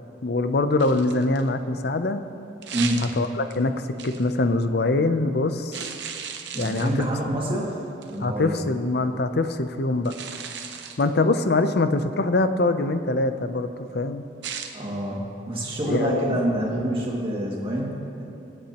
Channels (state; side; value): normal; both; correlation 0.39